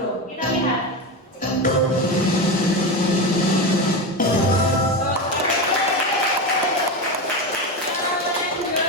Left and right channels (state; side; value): normal; both; correlation 0.18